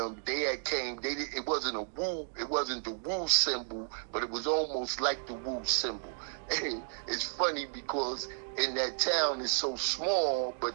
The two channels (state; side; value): silent; left; digital silence